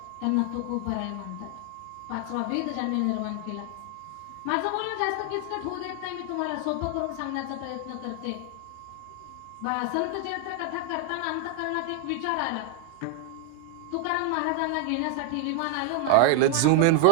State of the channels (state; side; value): different; both; correlation 0.00